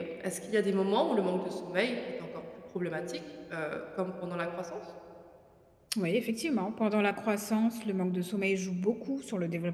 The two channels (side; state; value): both; identical; correlation 1.00